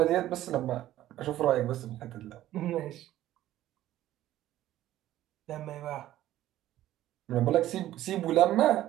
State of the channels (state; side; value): quieter; left; 13.9 dB